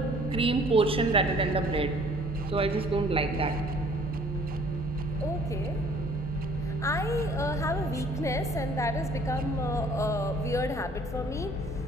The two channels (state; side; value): normal; both; correlation 0.56